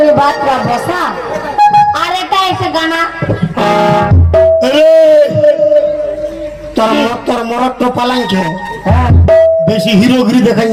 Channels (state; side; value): identical; both; correlation 1.00